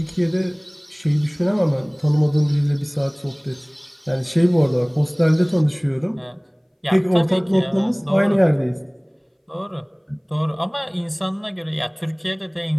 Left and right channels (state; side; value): identical; both; correlation 1.00